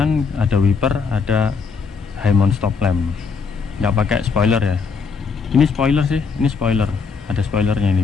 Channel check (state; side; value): quieter; right; 5.3 dB